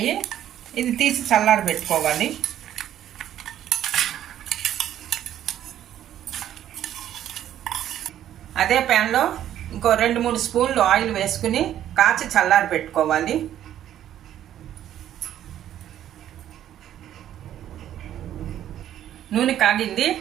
ఇది తీసి చల్లారి పెట్టుకోవాలి. అదే ప్యాన్లో ఇంకో 2-3 స్పూన్లు ఆయిల్ వేసుకుని కాచి చల్లారి పెట్టుకోవాలి. నూనె కాగింది.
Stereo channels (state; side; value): quieter; left; 11.4 dB